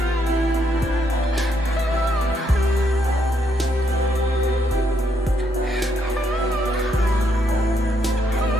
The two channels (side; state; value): both; normal; correlation 0.75